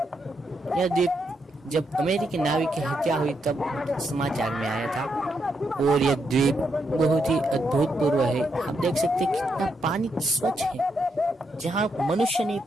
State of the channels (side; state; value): both; normal; correlation 0.80